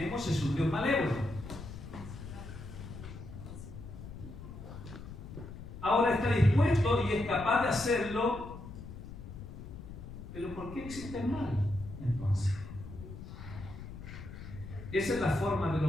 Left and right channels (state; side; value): noise; left; rumble, 12 dB below the sound